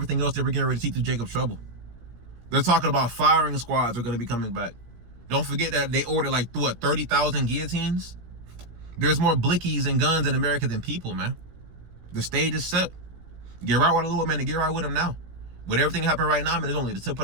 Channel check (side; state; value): left; late; 17 ms